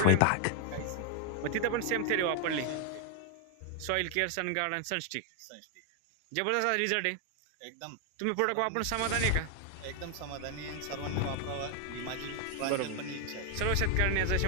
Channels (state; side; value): different; both; correlation 0.00